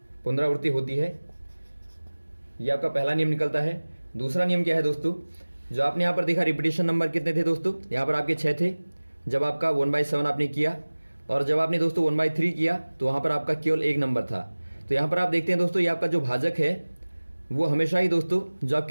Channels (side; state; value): both; inverted; correlation -1.00